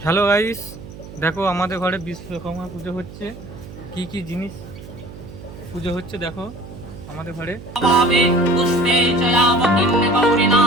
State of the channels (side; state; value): right; noise; hum, 15 dB below the sound